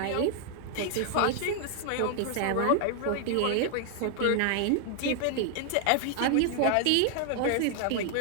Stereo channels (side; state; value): both; different; correlation 0.00